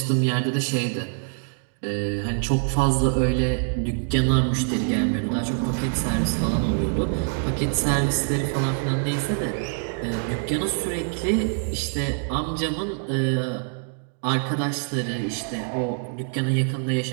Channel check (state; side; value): silent; left; 57 dB below the other